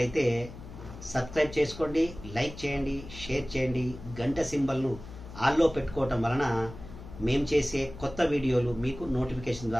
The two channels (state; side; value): noise; left; hum, 14 dB below the sound